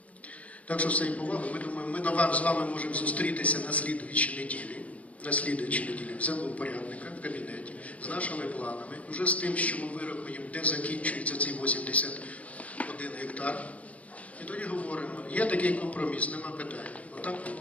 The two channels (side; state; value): right; late; 0.066 ms